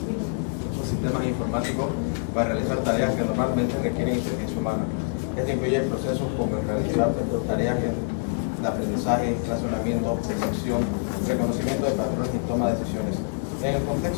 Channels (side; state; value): right; silent; digital silence